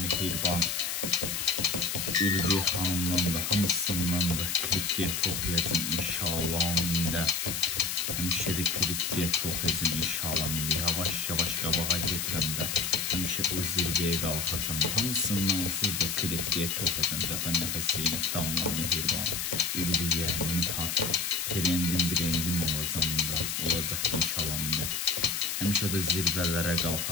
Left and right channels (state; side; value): noise; left; hiss, 2 dB below the sound